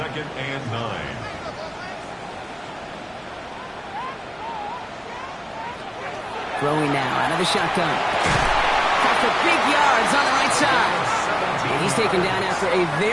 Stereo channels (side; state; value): both; identical; correlation 1.00